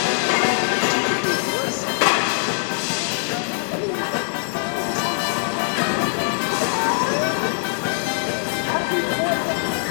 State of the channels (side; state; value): right; silent; 64 dB below the other